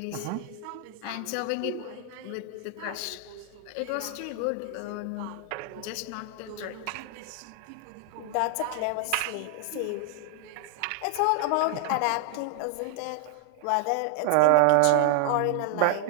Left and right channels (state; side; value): different; both; correlation 0.00